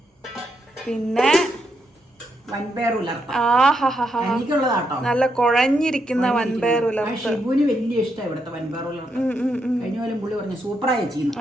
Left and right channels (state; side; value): normal; both; correlation 0.80